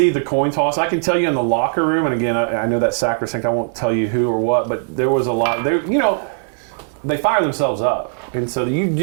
the coin toss. I can tell you in the locker room, and again, I know that sacrosanct. I won't tell you who or what, but there was a lot. They fire themselves up, and so you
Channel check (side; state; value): left; silent; digital silence